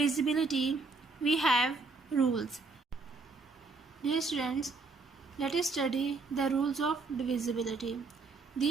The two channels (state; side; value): quieter; left; 4.0 dB